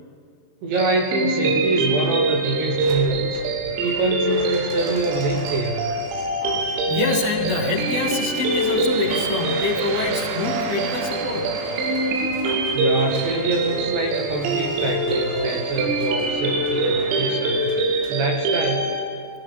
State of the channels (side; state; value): left; late; 20 ms